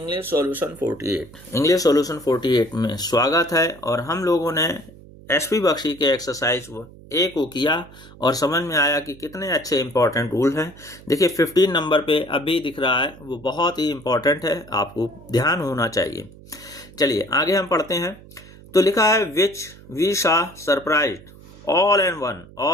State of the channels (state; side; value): noise; right; hum, 21 dB below the sound